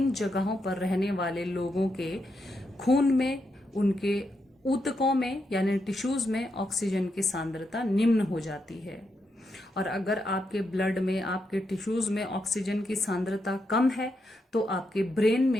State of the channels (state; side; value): normal; both; correlation 0.83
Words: जगहों पर रहने वाले लोगों के खून में, उनके ऊतकों में यानी टिश्यूज में ऑक्सीजन की सांद्रता निम्न हो जाती है। और अगर आपके ब्लड में, आपके टिश्यूज में ऑक्सीजन की सांद्रता कम है, तो आपके ब्रेन